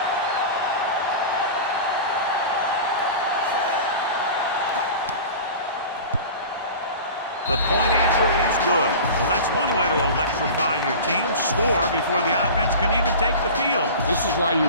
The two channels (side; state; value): both; inverted; correlation -0.35